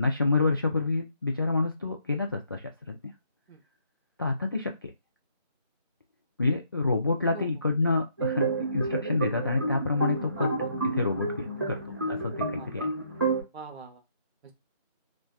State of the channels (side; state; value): both; inverted; correlation -0.71